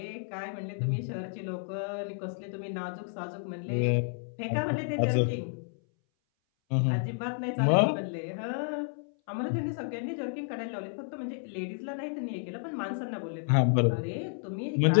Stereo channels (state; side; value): silent; right; 57 dB below the other